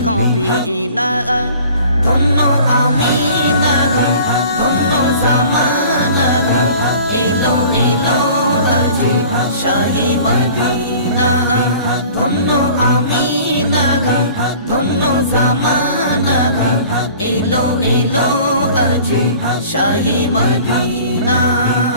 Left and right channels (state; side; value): inverted; both; correlation -0.47